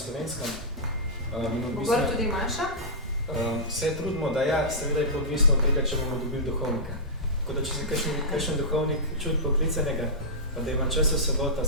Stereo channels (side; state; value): both; normal; correlation -0.14